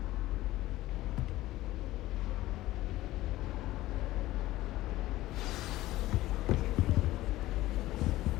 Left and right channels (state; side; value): quieter; right; 16.5 dB